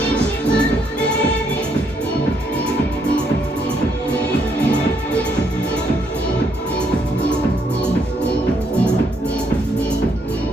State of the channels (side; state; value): both; normal; correlation 0.73